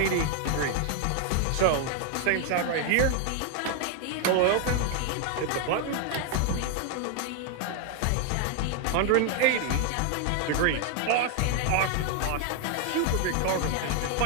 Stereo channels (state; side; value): different; both; correlation 0.01